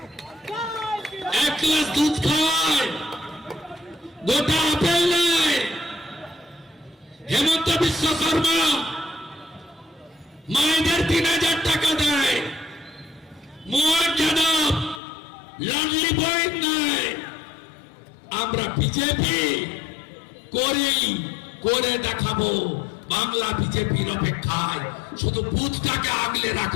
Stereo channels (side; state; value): right; drops out; at 15.0 s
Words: 1 গ্লাস দুধ খাওয়ায়, গোটা আপেল নেয়। হেমন্ত বিশ্ব শর্মা মায়েদের 3000 টাকা দেয়, মোহন যাদব লাডলি বই নেয়। আমরা বিজেপি করে দেখাবো। বাংলা বিজেপির অপেক্ষায়, শুধু বুথটাকে আগলে